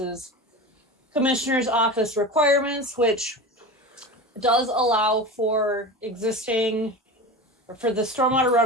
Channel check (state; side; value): normal; both; correlation 0.29